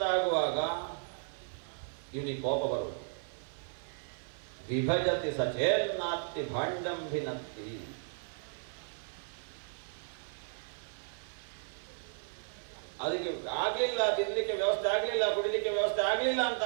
ಆಗುವಾಗ ಇವನಿಗೆ ಕೋಪ ಬರುವುದು. ವಿಭಜತಿ ಸಚೇನ್ನಾತ್ತಿ ಭಾಂಡಂಭಿನತ್ತಿ. ಅದಕ್ಕೆ ಆಗಲಿಲ್ಲ, ತಿನ್ನಲಿಕ್ಕೆ ವ್ಯವಸ್ಥೆ ಆಗಲಿಲ್ಲ, ಕುಡಿಲಿಕ್ಕೆ ವ್ಯವಸ್ಥೆ ಆಗಲಿಲ್ಲ ಅಂತ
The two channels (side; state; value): left; silent; 55 dB below the other